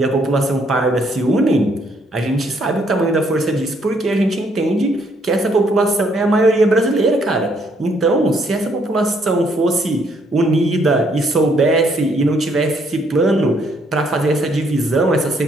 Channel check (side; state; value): both; normal; correlation 0.69